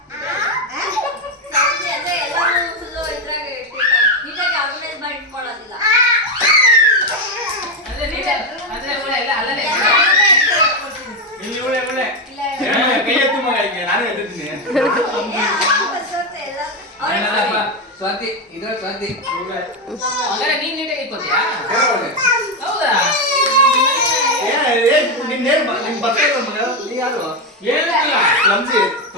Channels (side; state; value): both; normal; correlation 0.08